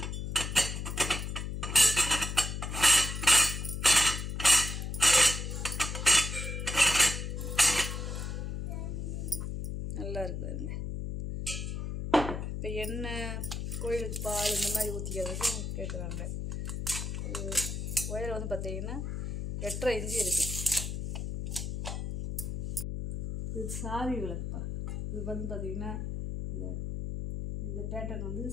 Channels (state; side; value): noise; left; hum, 4 dB below the sound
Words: நல்லா இருக்குதுங்க. இப்போ எண்ணெய், கோயிலுக்கு பால் இந்த மாதிரி ஊற்றிக்கிறதுக்கு கேட்குறாங்க. உயரம் வந்து பார்த்திங்கன்னா 8.5 இன்ச்சு இருக்குது. இது சாவி விளக்குப்பா. இது வந்து பார்த்திங்கன்னா இந்த பேட்டர்ன் வந்து